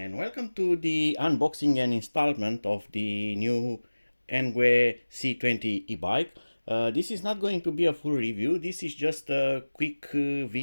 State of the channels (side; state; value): both; inverted; correlation -1.00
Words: welcome to the unboxing and installment of the new ENGWE C20 e-bike. This is not going to be a full review, this is just a quick